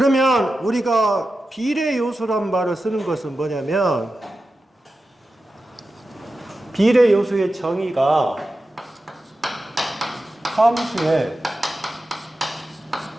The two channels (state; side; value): normal; both; correlation 0.92